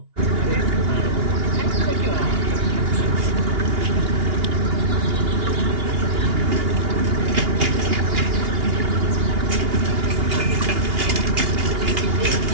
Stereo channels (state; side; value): late; left; 2.8 ms